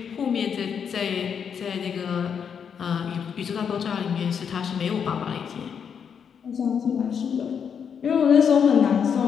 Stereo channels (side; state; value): right; quieter; 7.2 dB